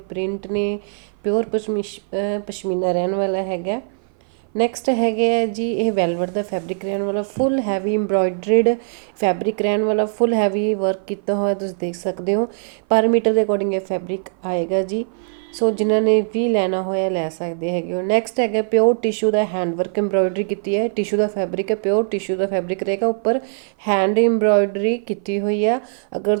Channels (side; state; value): left; silent; 57 dB below the other